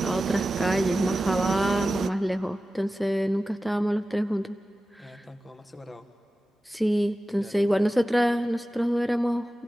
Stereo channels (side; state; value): both; normal; correlation 0.95